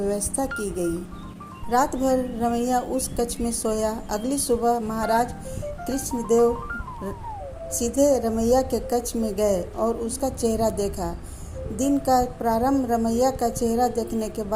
की गई। रात भर रमैया उस कक्ष में सोया। अगली सुबह महाराज कृष्णदेव सीधे रमैया के कक्ष में गए और उसका चेहरा देखा। दिन का प्रारंभ रमैया का चेहरा देखने के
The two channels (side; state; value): both; identical; correlation 1.00